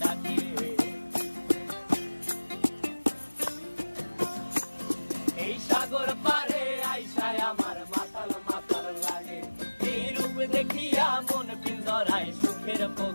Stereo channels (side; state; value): both; inverted; correlation -1.00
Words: ডাকে। এই সাগর পারে আইসায় আমার মাতাল মাতাল লাগে, এই রূপ দেখিয়া মন পিঞ্জরায় সুখের